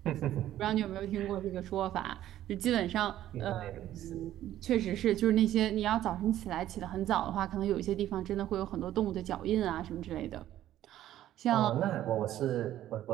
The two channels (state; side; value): quieter; left; 12.8 dB